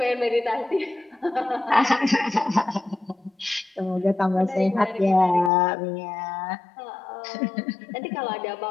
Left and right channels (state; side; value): drops out; right; at 5.5 s